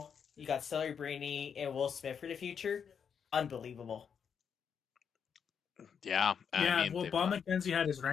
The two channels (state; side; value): quieter; right; 7.1 dB